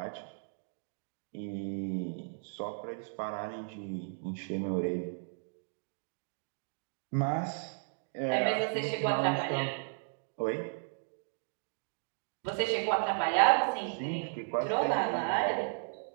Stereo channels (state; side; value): silent; left; digital silence